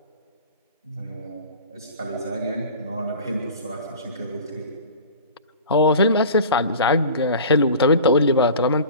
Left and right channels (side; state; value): both; inverted; correlation -0.39